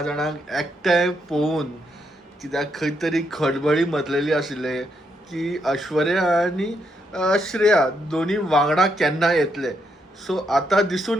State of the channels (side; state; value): both; normal; correlation 0.78